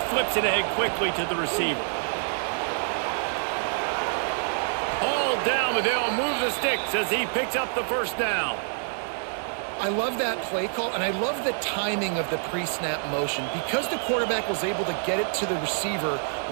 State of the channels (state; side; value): silent; left; 59 dB below the other